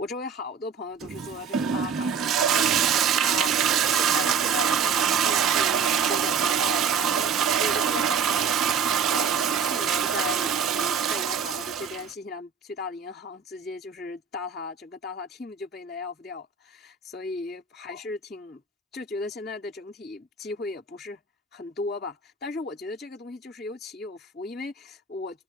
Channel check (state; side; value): quieter; left; 6.2 dB